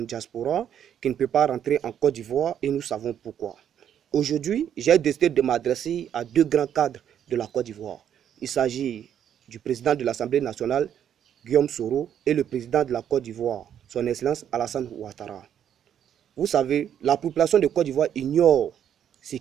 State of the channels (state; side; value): quieter; left; 9.5 dB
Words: diaspora, qui ne peuvent pas rentrer en Côte d'Ivoire et nous savons pourquoi. Aujourd'hui, j'ai décidé de m'adresser à deux grands cadres de la Côte d'Ivoire. Il s'agit du président de l'Assemblée nationale, Guillaume Soro, et le président de la Côte d'Ivoire, son Excellence Alassane Ouattara. Vous savez, la population de Côte d'Ivoire ignore ce